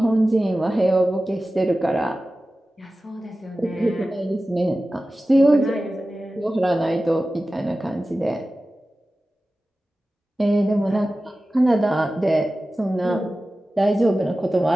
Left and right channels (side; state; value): both; normal; correlation 0.95